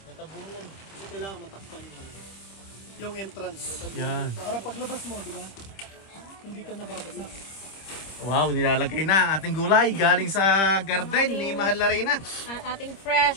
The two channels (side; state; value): right; late; 26 ms